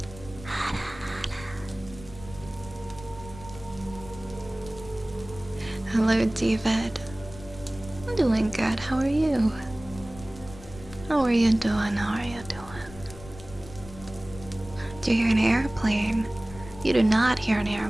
Hello, David. I'm doing good. How are you? How are you doing? How are you doing? Do you hear an airplane? You do not hear an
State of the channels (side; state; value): left; noise; rumble, 17 dB below the sound